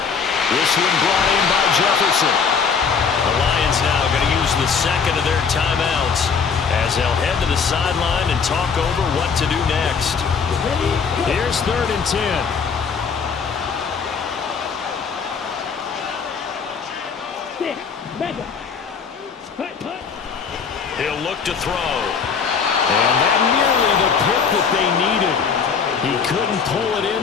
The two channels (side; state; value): right; quieter; 6.0 dB